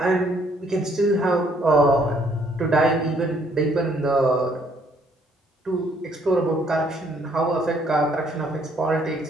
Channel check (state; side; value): normal; both; correlation 0.66